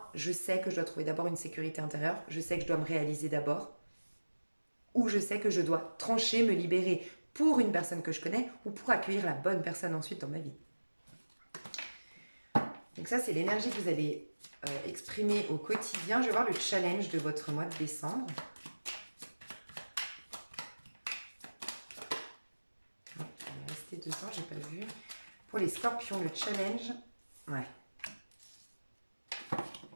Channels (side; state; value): both; inverted; correlation -1.00